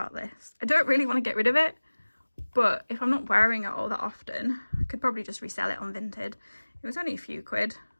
this. I don't really want to get rid of it, but if I'm not wearing it all that often, I could probably just resell it on Vinted. It was only a few quid,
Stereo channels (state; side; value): inverted; both; correlation -1.00